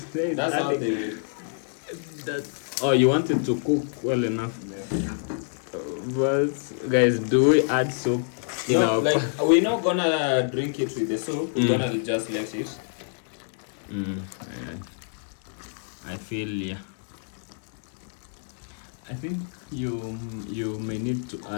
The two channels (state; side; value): silent; right; digital silence